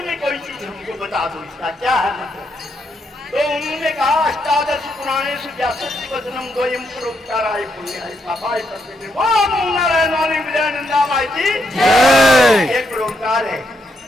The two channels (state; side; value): normal; both; correlation 0.78